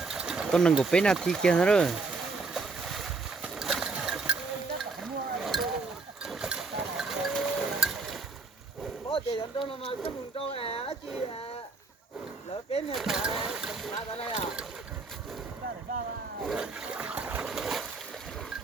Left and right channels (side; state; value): left; quieter; 4.0 dB